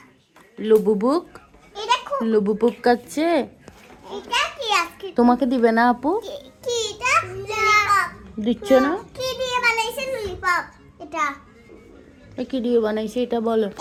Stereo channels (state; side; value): identical; both; correlation 1.00